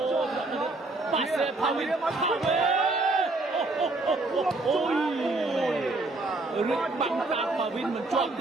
Danit Pase Pawin Ôi Rực bắn tạp và Vin mình chọn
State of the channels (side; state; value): left; quieter; 3.0 dB